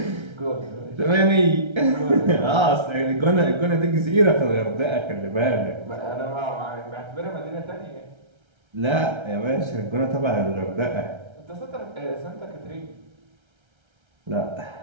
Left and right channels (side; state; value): left; late; 1.3 ms